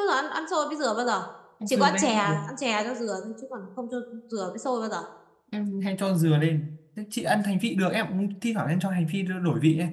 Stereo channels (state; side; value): identical; both; correlation 1.00